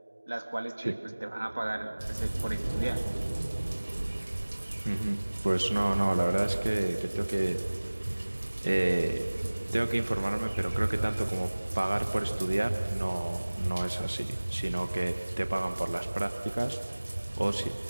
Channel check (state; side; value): inverted; both; correlation -1.00